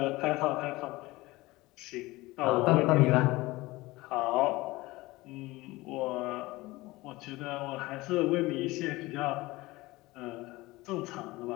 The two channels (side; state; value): right; quieter; 20.3 dB